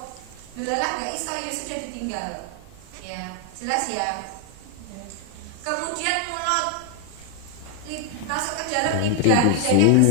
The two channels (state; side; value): different; both; correlation 0.01